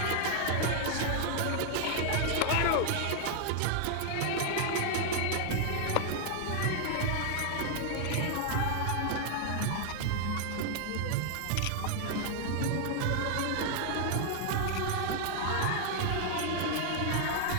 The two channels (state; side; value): different; both; correlation 0.00